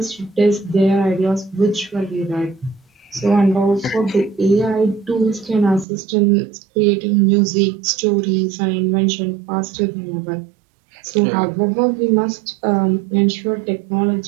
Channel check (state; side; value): drops out; left; at 5.9 s